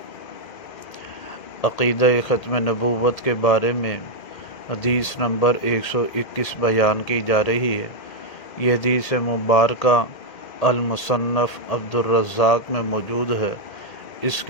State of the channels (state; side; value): late; right; 1.8 ms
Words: عقیدہ ختم نبوت کے بارے میں حدیث نمبر 121 بیان کی جا رہی ہے۔ یہ حدیث مبارکہ المصنف عبدالرزاق میں موجود ہے۔ اس